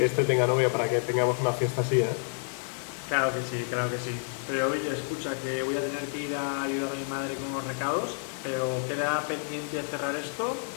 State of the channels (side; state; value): right; silent; 58 dB below the other